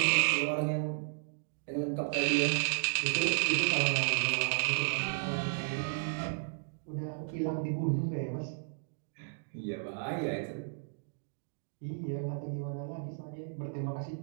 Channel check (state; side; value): silent; left; digital silence